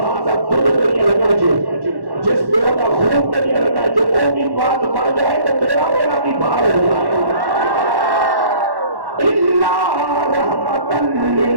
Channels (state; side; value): late; left; 1.1 ms